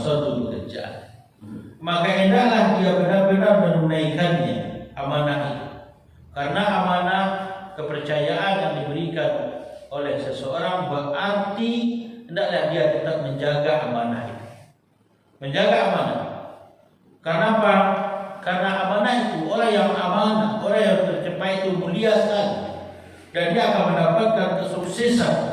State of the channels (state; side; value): identical; both; correlation 1.00